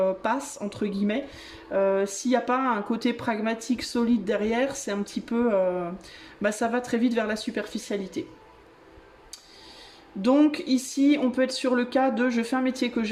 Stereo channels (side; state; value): both; identical; correlation 1.00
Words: passe, entre guillemets, s'il n'y a pas un côté pragmatique solide derrière, c'est un petit peu... ça va très vite vers la superficialité. Donc ici, on peut être sur le cas de je fais un métier que